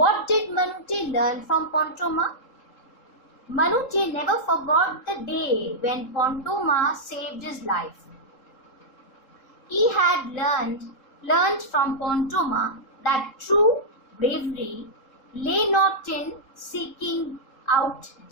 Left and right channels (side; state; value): right; late; 3.7 ms